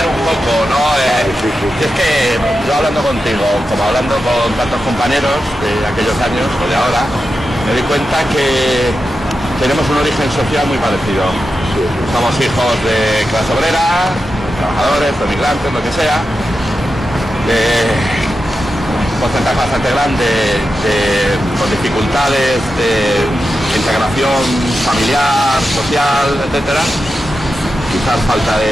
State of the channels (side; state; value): both; normal; correlation 0.90